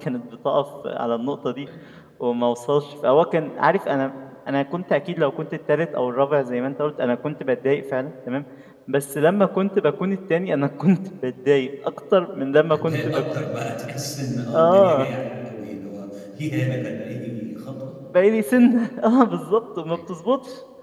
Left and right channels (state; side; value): identical; both; correlation 1.00